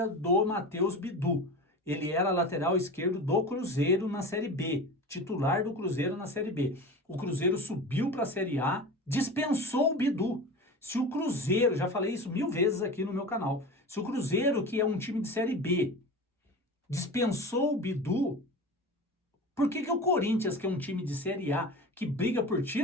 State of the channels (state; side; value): normal; both; correlation 0.32